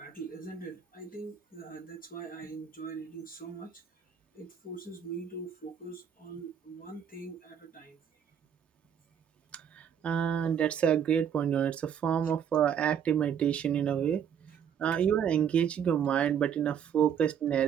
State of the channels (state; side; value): quieter; left; 8.3 dB